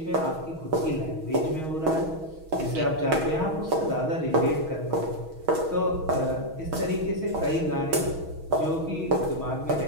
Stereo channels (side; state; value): left; late; 6.3 ms